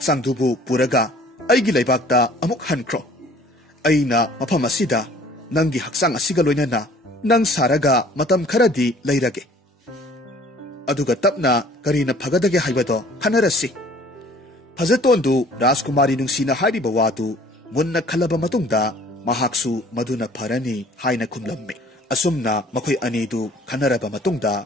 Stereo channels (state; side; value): normal; both; correlation 0.53